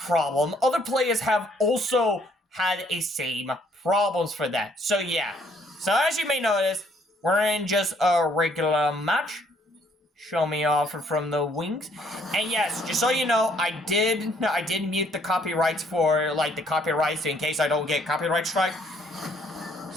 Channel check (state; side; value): normal; both; correlation 0.65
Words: Other players have also had a same problems for that. So yeah. So as you may notice, we're in just a regular match. Show me off from the wings. And yes, just so you know, I did mute the copyrights for the copyrights in case I don't get copyright strike.